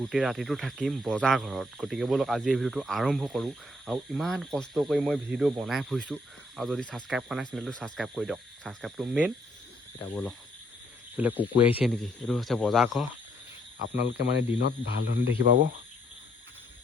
ৰাতিটো থাকিম বজাৰ ঘৰত, গতিকে ব'লক আজি এই ভিডিঅ'টো আৰম্ভ কৰোঁ। আৰু ইমান কষ্ট কৰি মই ভিডিঅ' বনাই ফুৰিছোঁ, আৰু যদি ছাবস্ক্ৰাইব কৰা নাই চেনেলটো ছাবস্ক্ৰাইব কৰি দিয়ক, ছাবস্ক্ৰাইবটো মেইন। এতিয়া ব'লক, বোলে কুকুৰ আহিছে নেকি? এইটো হৈছে বজাৰ ঘৰ, আপোনালোকে মানে দিনত ভাল ধৰণে দেখি পাব।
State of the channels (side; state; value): both; normal; correlation 0.70